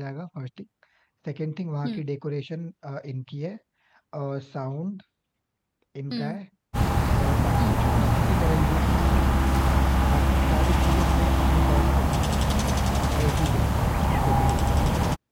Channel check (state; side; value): identical; both; correlation 1.00